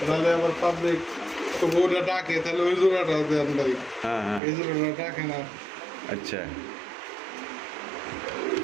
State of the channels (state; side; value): drops out; left; at 4.4 s